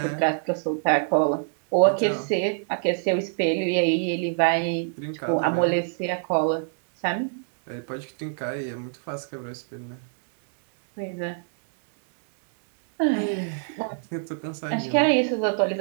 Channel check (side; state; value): left; silent; 62 dB below the other